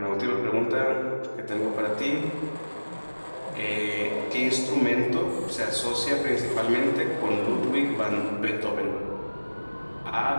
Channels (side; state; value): both; inverted; correlation -1.00